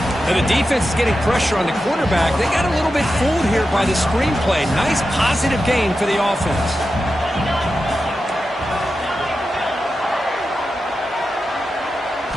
And the defense is getting pressure on the quarterback. They got a little bit fooled here by the screen play. Nice positive gain for the offense.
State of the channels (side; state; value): both; normal; correlation 0.91